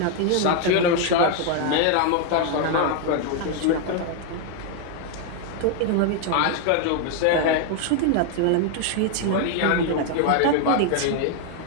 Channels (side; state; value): both; different; correlation 0.00